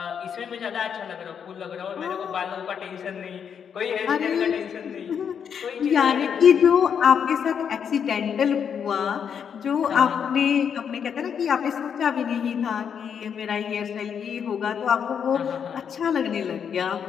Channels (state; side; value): quieter; right; 7.5 dB